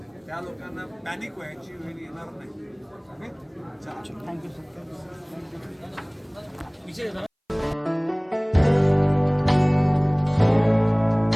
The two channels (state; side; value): identical; both; correlation 1.00